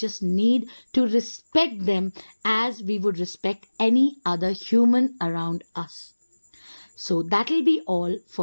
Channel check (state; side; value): inverted; both; correlation -1.00